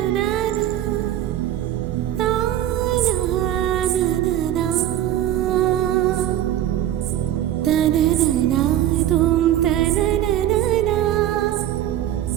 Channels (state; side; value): quieter; left; 12.1 dB